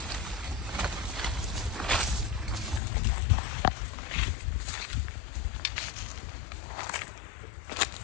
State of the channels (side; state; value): right; drops out; at 2.8 s